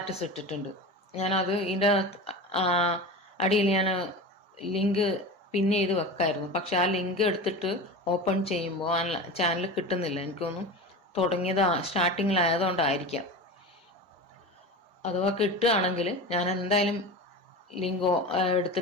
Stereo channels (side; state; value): both; normal; correlation 0.29